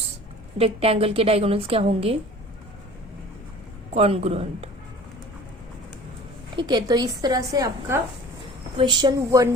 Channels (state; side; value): normal; both; correlation 0.43